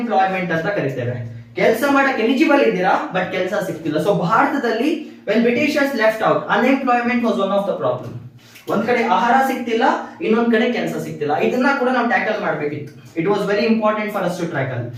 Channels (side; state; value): both; identical; correlation 1.00